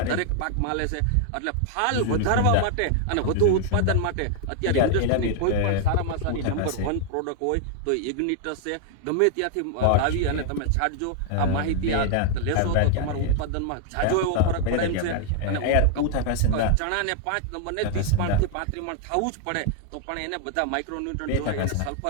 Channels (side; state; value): both; different; correlation 0.00